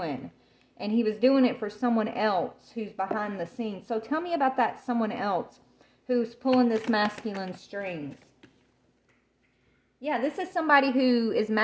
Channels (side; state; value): both; identical; correlation 1.00